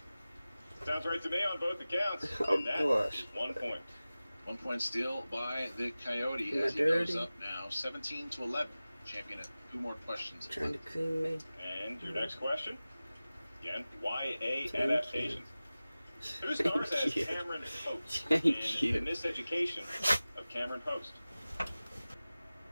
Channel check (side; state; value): both; inverted; correlation -0.97